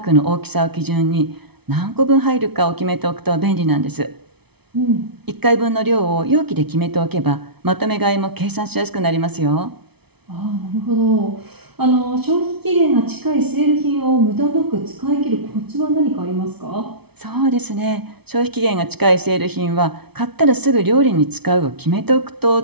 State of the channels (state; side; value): late; left; 0.98 ms